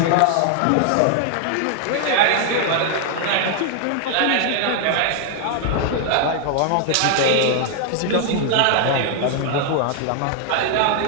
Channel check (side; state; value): both; different; correlation 0.00